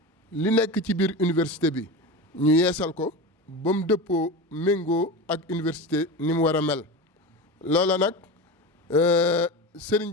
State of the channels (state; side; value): normal; both; correlation 0.25